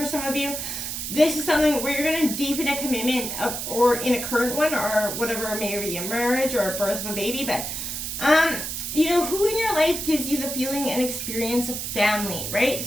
some of you. This is something where you're going to deepen a commitment or in a current one or whatever, maybe a marriage or a birth of a baby. But, who in your life gives you the feeling and experience of family, right?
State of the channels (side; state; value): right; noise; hiss, 5 dB below the sound